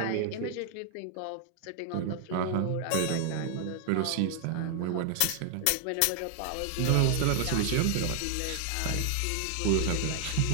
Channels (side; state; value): both; different; correlation 0.00